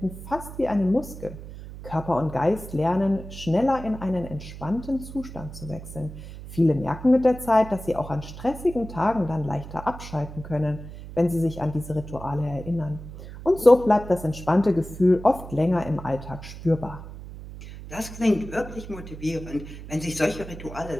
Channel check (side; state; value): right; noise; hum, 13 dB below the sound